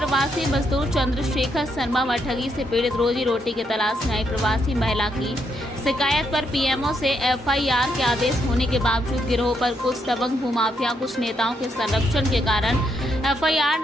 मजदूर चंद्रशेखर शर्मा व ठगी से पीड़ित रोजी रोटी की तलाश में आई प्रवासी महिला की शिकायत पर पीएमओ से एफआईआर के आदेश होने के बावजूद गिरोह पर कुछ दबंग भूमाफिया, कुछ नेताओं के संरक्षण के कारण एफआईआर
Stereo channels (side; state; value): both; normal; correlation 0.77